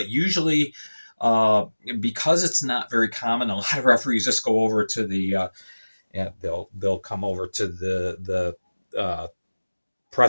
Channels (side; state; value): both; inverted; correlation -1.00